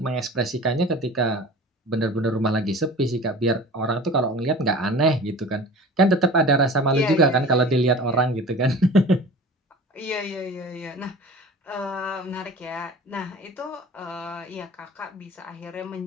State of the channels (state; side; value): normal; both; correlation 0.40